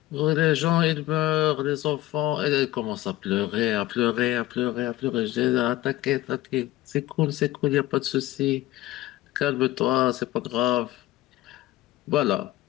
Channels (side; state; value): right; quieter; 16.3 dB